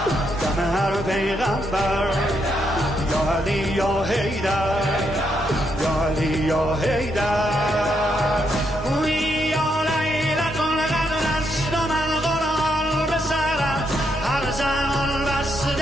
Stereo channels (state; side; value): normal; both; correlation 0.78